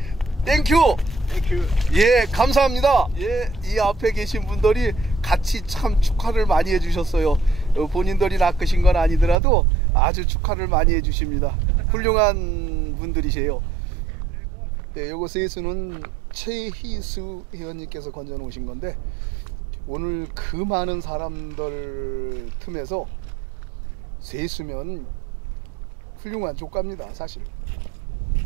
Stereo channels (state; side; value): drops out; left; at 9.3 s